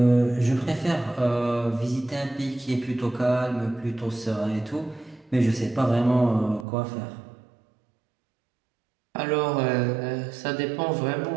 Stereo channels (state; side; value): drops out; left; at 6.7 s